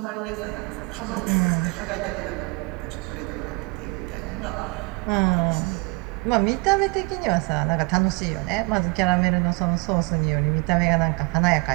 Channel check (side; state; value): left; quieter; 28.3 dB